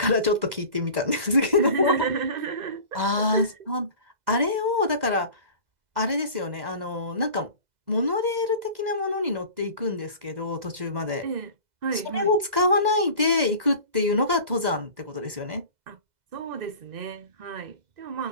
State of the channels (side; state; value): left; late; 2.0 ms